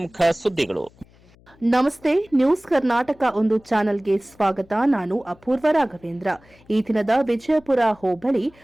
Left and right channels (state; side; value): noise; left; hum, 28 dB below the sound